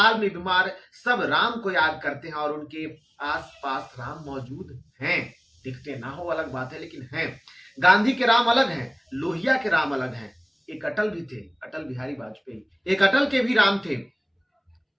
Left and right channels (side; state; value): both; identical; correlation 1.00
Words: में बीमार, सब राम को याद करते हैं, और उनके आसपास राम मौजूद हैं। दिखते ना हो अलग बात है, लेकिन हैं। गांधी के राम अलग हैं, लोहिया के राम अलग हैं। एक अटल भी थे, अटल बिहारी वाजपेयी, एक अटल के भी राम थे।